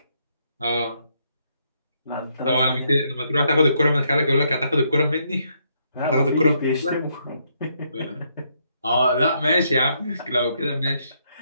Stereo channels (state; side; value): inverted; both; correlation -0.74